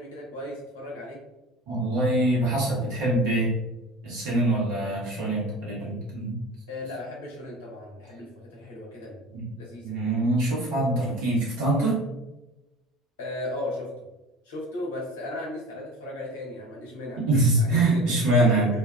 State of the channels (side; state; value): both; normal; correlation 0.35